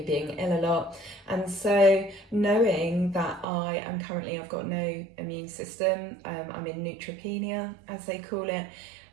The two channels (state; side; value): drops out; left; at 3.5 s